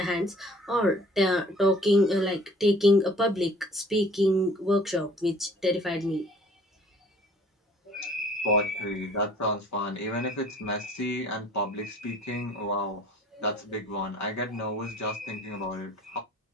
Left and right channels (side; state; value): both; normal; correlation 0.52